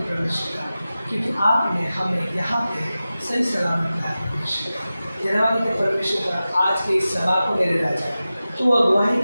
परमेश्वर का क्योंकि आपने हमें यहाँ पे सही सलामत लाया परमेश्वर का। धन्यवाद देते परमेश्वर का आज के इस सभा को मेरे राजा तो अगुवाही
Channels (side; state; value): both; inverted; correlation -0.95